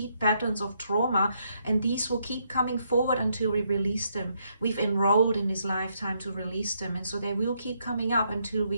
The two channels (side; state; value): both; inverted; correlation -0.75